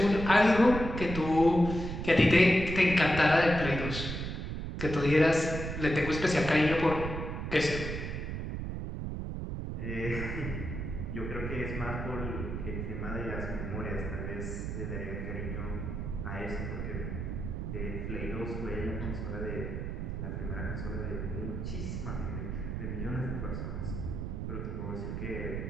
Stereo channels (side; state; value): right; noise; rumble, 4 dB below the sound